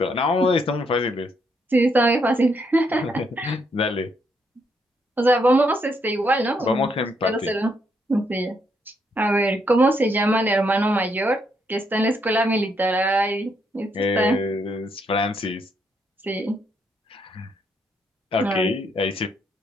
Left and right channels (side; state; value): both; normal; correlation 0.75